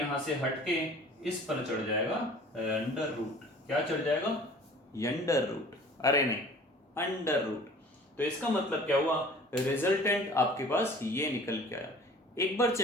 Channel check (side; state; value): both; normal; correlation 0.47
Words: से हटके इस पर चढ़ जाएगा अंडर रूट। क्या चढ़ जाएगा? Under root. अरे नहीं, अंडर रूट। तो इसका मतलब क्या हुआ? रिजल्टेंट आपके पास ये निकल के आया। एक बार